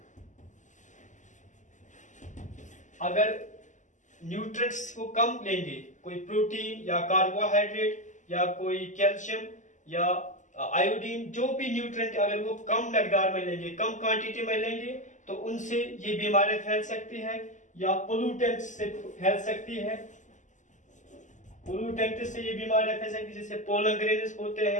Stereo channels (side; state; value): right; late; 0.36 ms